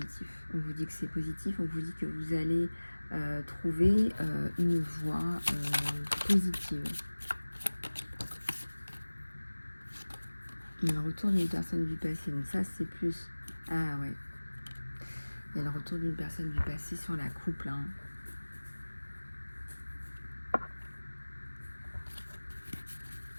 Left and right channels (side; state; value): both; inverted; correlation -1.00